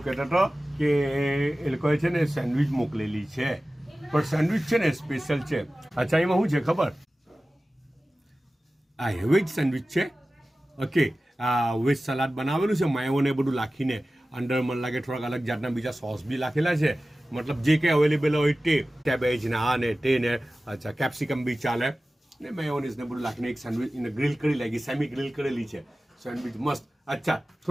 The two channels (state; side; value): normal; both; correlation 0.96